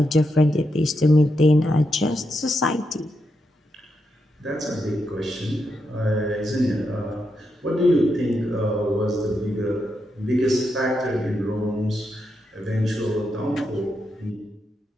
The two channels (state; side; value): normal; both; correlation 0.84